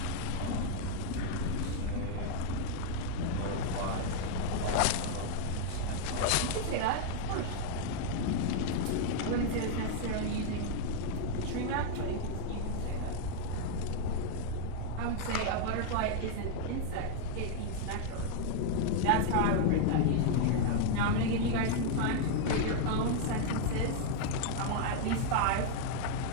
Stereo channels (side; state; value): both; different; correlation 0.00